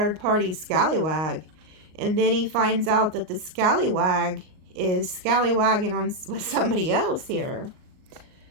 scallywag. And then he finds out that the scallywag is scallywagging on with somebody else here.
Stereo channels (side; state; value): left; late; 38 ms